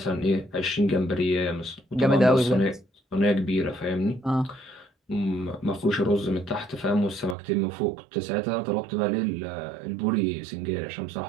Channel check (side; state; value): left; drops out; at 7.4 s